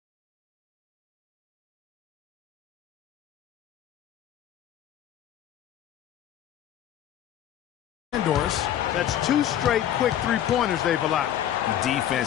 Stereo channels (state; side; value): quieter; right; 11.0 dB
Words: Doris. That's 2 straight quick three-pointers they've allowed.